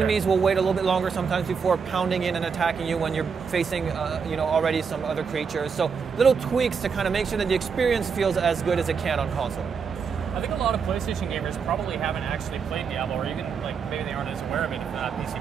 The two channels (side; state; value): left; quieter; 6.0 dB